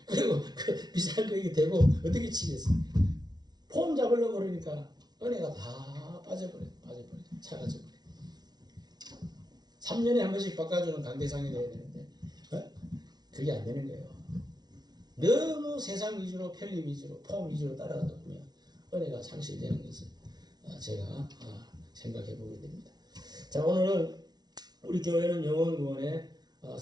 그리고 그 비싼 거 이게 대고 어떻게 치겠어? 폼 잡으려고 그러니까 은혜가 다 빠져버려. 사라져버려. 3년에 한 번씩 바꿔주는 강대상이 돼야 되는데 그게 안 되는 거예요. 너무 세상 위주로, 편리 위주로, 폼 위주로 따라가다 보면 은혜가 상실되는 것을 제가 생각해 보게 됩니다. 자, 오늘은 우리 교회는 영혼 구원의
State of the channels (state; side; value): late; left; 0.19 ms